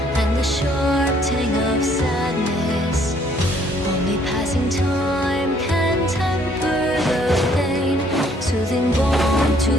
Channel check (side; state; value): both; normal; correlation 0.63